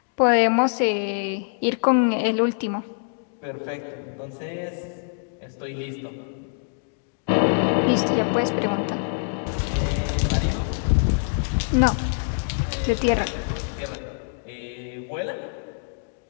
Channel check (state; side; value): silent; right; digital silence